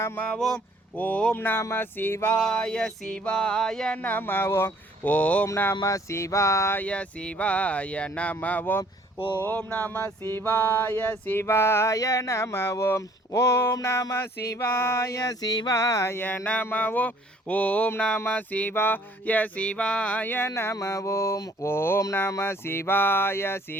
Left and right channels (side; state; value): both; normal; correlation 0.58